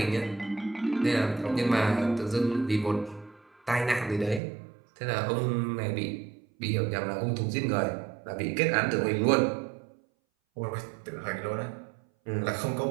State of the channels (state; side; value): drops out; left; at 4.4 s